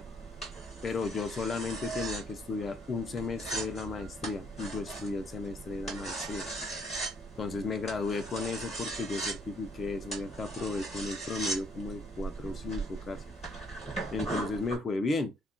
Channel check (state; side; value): normal; both; correlation 0.67